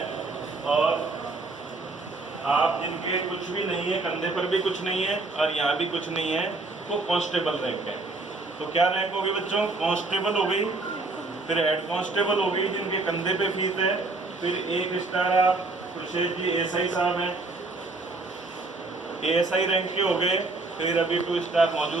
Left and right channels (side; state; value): left; quieter; 3.4 dB